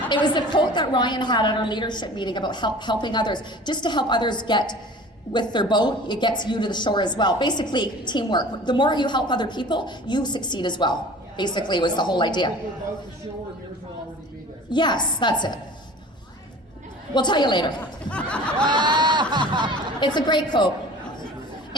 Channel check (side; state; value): both; normal; correlation 0.43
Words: It was the quote that Ryan had at our leadership meeting about helping others. Just to help others get with their boat, it gets you to the shore as well. Basically, teamwork. The more you help other people, you succeed as well. Basically, was the whole idea. Yes, that's it. We'll tell you later. It's a great quote.